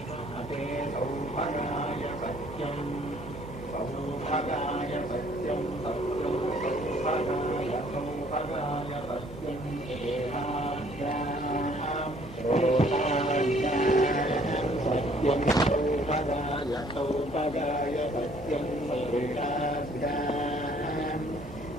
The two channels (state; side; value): normal; both; correlation 0.60